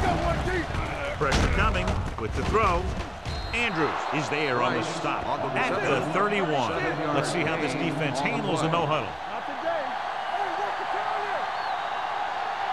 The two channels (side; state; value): both; identical; correlation 1.00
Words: go, one deep. Pressure coming with the throw. Andrews is there on the stop at the 31. Let's see how this defense handles a no-huddle. Not today. Hey, what's the